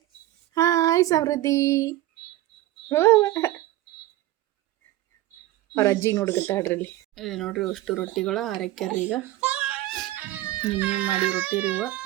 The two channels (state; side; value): quieter; left; 15.5 dB